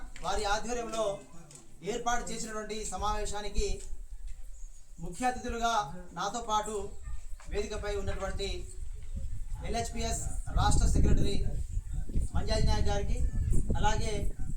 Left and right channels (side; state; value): both; identical; correlation 1.00